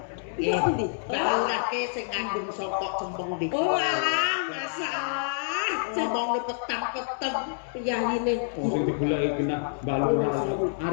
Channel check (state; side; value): silent; right; 60 dB below the other